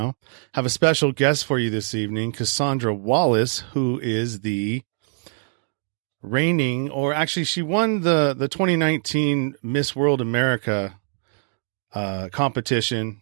I have a special guest for you this evening, Cassandra Wallace, who is the reigning, or actually she won the 2019 Miss World America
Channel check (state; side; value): silent; left; 63 dB below the other